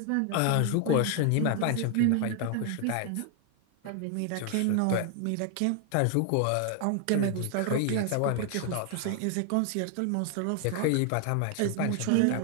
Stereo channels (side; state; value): both; different; correlation 0.00